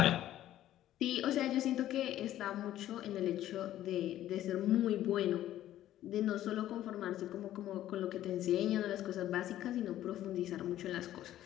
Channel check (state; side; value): quieter; right; 13.0 dB